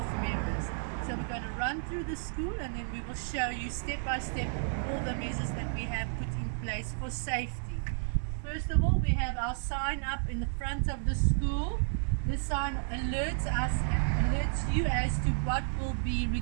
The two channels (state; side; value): silent; left; digital silence